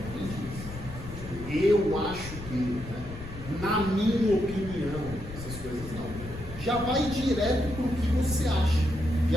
Eu acho que, né? Na minha opinião, essas coisas não. Já vai direto para o que você acha.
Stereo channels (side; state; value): left; noise; rumble, 12 dB below the sound